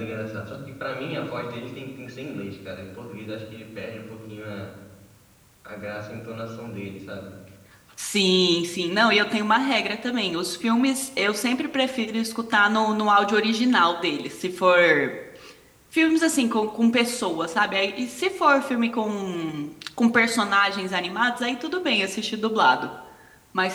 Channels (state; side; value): identical; both; correlation 1.00